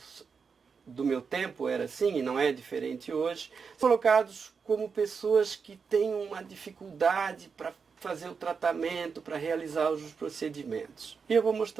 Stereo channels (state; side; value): quieter; left; 5.6 dB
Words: do meu tempo era assim, e não é diferente hoje, colocados como pessoas que têm uma dificuldade para fazer o tratamento, para realizar os procedimentos. E eu vou